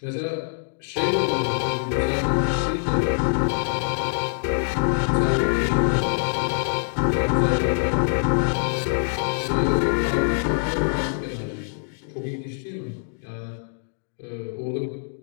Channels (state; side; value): silent; right; digital silence